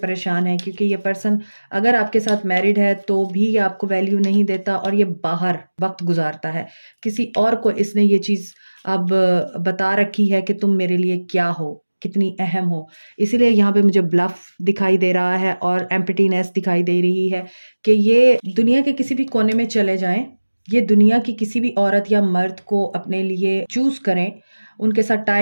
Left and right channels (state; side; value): inverted; both; correlation -1.00